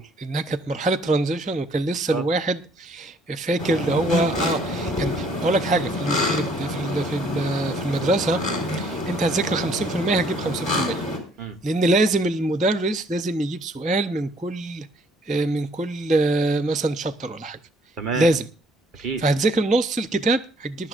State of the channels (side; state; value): both; normal; correlation 0.63